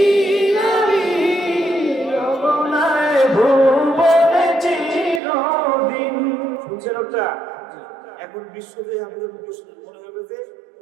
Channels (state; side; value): drops out; left; at 5.2 s